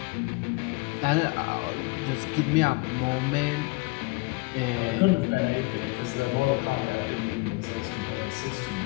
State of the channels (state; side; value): quieter; right; 26.0 dB